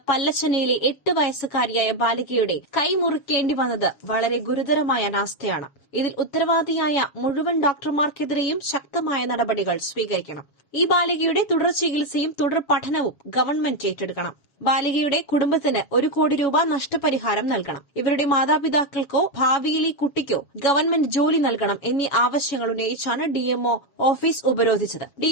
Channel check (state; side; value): late; right; 7.3 ms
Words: പല്ലശ്ശനയിലെ 8 വയസ്സുകാരിയായ ബാലികയുടെ കൈ മുറിക്കേണ്ടി വന്നത് വളരെ ഗുരുതരമായ അനാസ്ഥയാണ്. ഇതിൽ ഉത്തരവാദിയായ മുഴുവൻ ഡോക്ടർമാർക്കെതിരെയും ശക്തമായ നടപടികൾ സ്വീകരിക്കണം. ഈ ബാലികയുടെ തുടർ ചികിത്സയും തുടർ പഠനവും ഗവൺമെന്റ് ഏറ്റെടുക്കണം. ബാലികയുടെ കുടുംബത്തിന് 1 കോടി രൂപ നഷ്ടപരിഹാരം നൽകണം. ഇവരുടെ മാതാപിതാക്കൾക്കോ ഭാവിയിലെ കുട്ടിക്കോ ഗവൺമെന്റ് ജോലി നൽകണം എന്നീ ആവശ്യങ്ങൾ ഉന്നയിച്ചാണ് ഡിഎംഒ ഓഫീസ് ഉപരോധിച്ചത്.